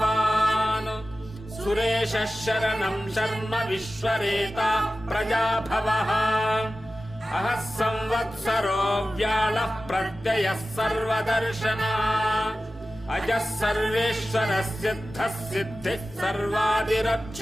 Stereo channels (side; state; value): both; normal; correlation 0.95